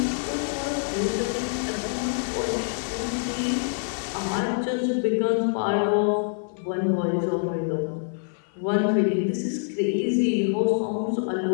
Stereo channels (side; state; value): right; silent; 61 dB below the other